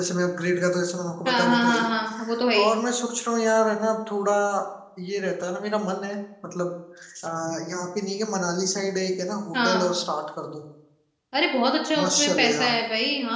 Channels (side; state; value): both; identical; correlation 1.00